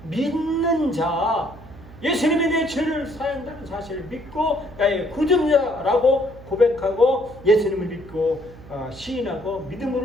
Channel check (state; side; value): noise; right; hum, 19 dB below the sound